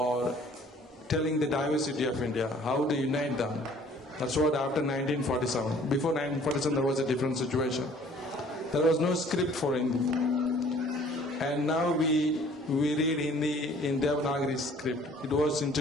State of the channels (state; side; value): normal; both; correlation 0.54